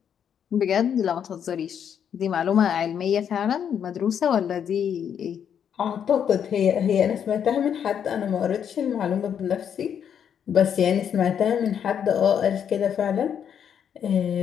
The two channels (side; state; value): right; quieter; 8.4 dB